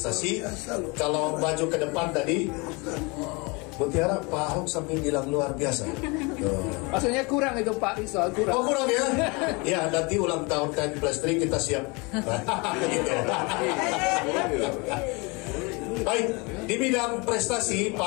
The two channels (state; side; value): quieter; right; 28.3 dB